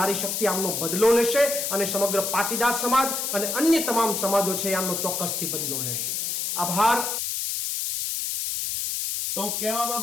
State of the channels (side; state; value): left; noise; hiss, 2 dB below the sound